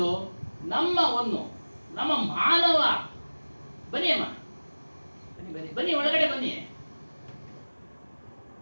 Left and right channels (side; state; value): both; inverted; correlation -1.00